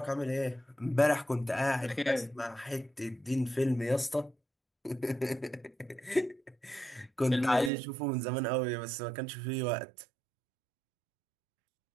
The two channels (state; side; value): drops out; left; at 7.7 s